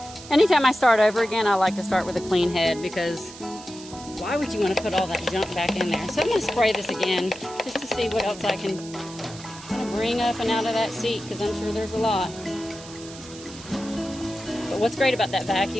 Anytime I start over again, I like to start with a clean head because why would you want to put all that junk back in there? So I'm going to spray this again just to see what else I can kind of bring up and out of that seat because I'm sure there's a lot. But what's great about that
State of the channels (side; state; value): right; noise; hiss, 16 dB below the sound